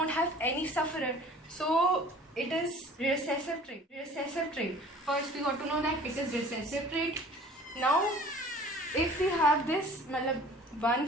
have any sufferer. So it is recessive trait. Recessive trait. First we got to know that it is recessive trait. Now if we have this, 1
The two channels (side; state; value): both; normal; correlation 0.48